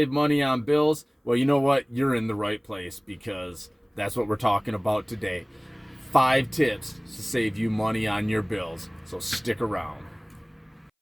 money on bills, well, you know what? You're in the right place, because that's what we're talking about today. 5 tips to save you money on your bills. So stick around.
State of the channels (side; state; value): both; identical; correlation 1.00